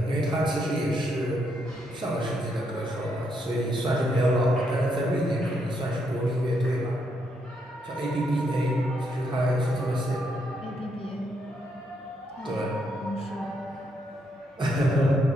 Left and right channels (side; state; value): both; normal; correlation 0.77